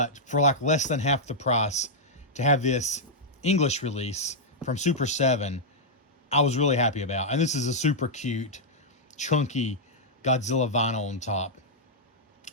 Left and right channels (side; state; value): both; normal; correlation -0.07